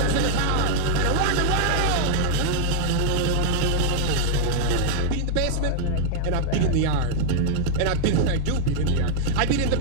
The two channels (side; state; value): both; different; correlation -0.01